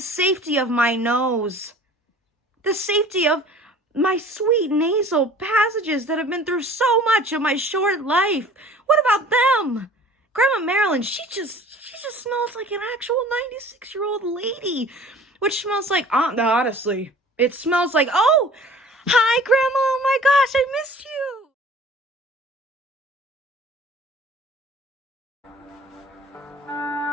of my nose? The safety of my sweet nasal passages that have been through so much of my short life. What about them? Grandma Marilyn, she just smells like an actual 96-year-old lady, which smells like, honestly, it smells like, oh, hi, Grandma, oh my gosh, I missed you.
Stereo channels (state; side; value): normal; both; correlation 0.46